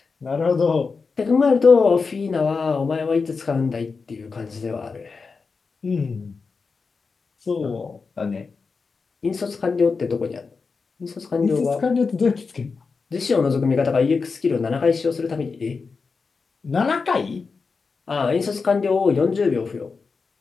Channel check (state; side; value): quieter; right; 4.7 dB